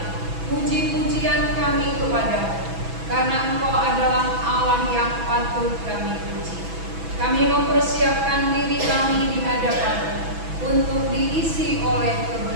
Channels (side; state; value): left; late; 6.1 ms